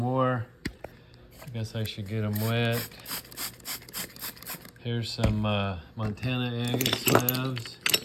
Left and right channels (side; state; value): both; identical; correlation 1.00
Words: I guess I should get them wet. Here's some Montana agate slabs.